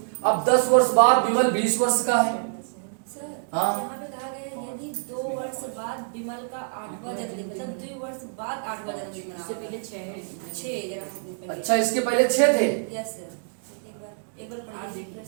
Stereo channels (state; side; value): silent; left; digital silence